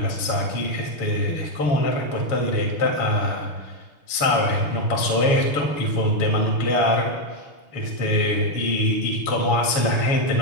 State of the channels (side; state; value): right; late; 7.1 ms